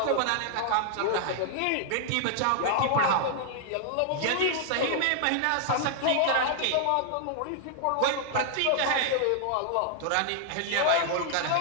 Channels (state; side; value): different; both; correlation -0.01